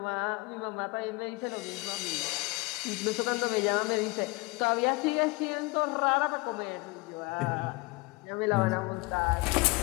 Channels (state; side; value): quieter; right; 25.2 dB